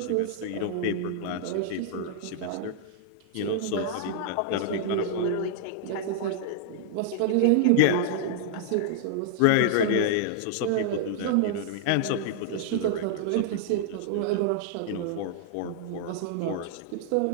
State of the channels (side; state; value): both; different; correlation -0.01